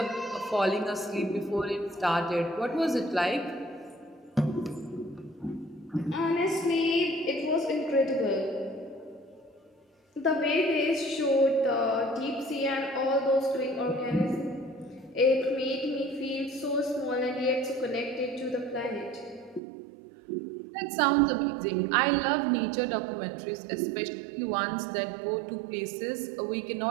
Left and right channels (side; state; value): left; drops out; at 19.6 s